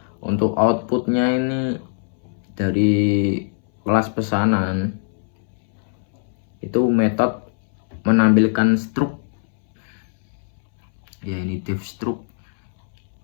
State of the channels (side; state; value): right; silent; 62 dB below the other